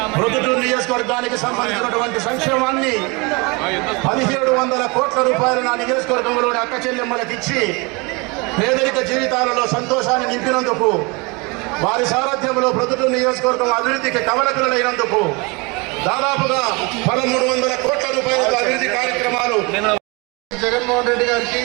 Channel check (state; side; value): quieter; left; 28.1 dB